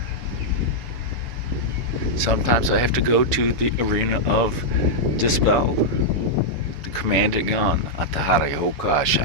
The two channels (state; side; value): late; left; 7.0 ms